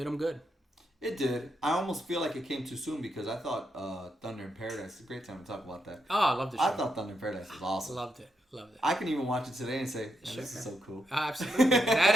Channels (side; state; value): both; normal; correlation 0.82